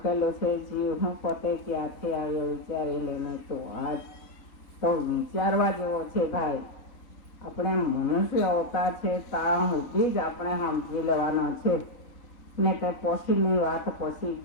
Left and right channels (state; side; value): late; right; 4.0 ms